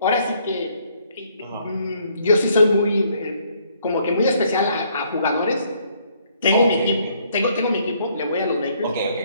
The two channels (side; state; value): both; inverted; correlation -0.66